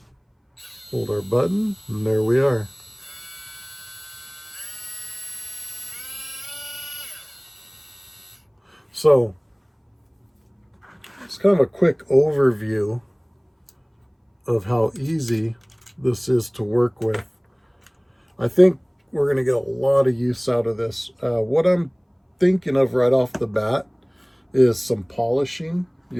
Hold our button, and there we are. So, it's kind of a quick overview of how easy this is to work with. I think we're going to get a lot of use out of this. What I'm thinking of right off the bat is some polishing.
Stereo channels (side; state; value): both; identical; correlation 1.00